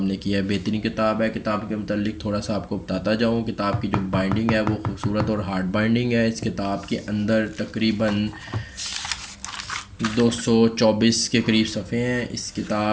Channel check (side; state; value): both; identical; correlation 1.00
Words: نے کیا ہے۔ بہترین کتاب ہے۔ کتاب کے متعلق تھوڑا سا آپ کو بتاتا جاؤں۔ کتاب کی جو بائنڈنگ ہے وہ خوبصورت اور ہارڈ بائنڈنگ ہے۔ اس کتاب کے اندر تقریباً 224 کے قریب صفحے ہیں۔ اس